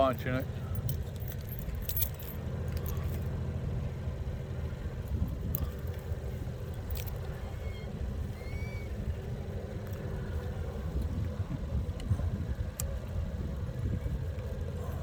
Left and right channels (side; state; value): both; identical; correlation 1.00